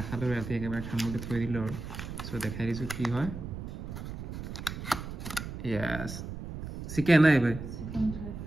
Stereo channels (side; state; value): right; noise; rumble, 8 dB below the sound